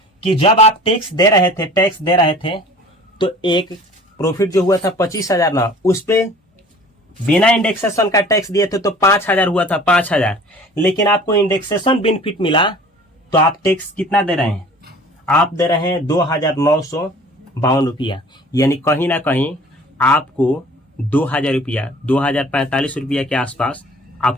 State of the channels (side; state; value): both; normal; correlation 0.47